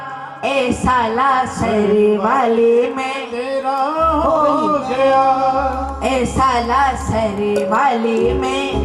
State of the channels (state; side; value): identical; both; correlation 1.00